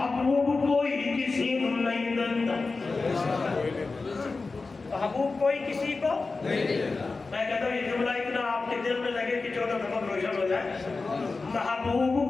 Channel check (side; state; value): right; quieter; 3.9 dB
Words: کوئی کسی کو نہیں دیتا، محبوب کوئی کسی کو نہیں دیتا۔ میں کہتا ہوں یہ جملہ اتنا آپ کے دل میں لگے کہ 14 دفعہ روشن ہو جائے،